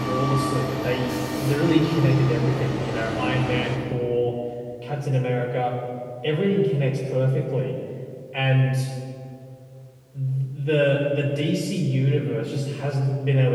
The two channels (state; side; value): identical; both; correlation 1.00